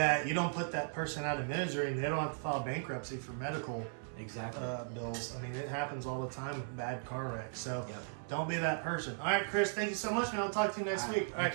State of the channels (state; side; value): silent; left; 53 dB below the other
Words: you don't put that person out of misery and they don't have to file bankruptcy for medical bills. I mean, it happens all the time with bad car wrecks. So don't be that person. All right, Chris, thank you so much, man. I'll talk to you next week. Thank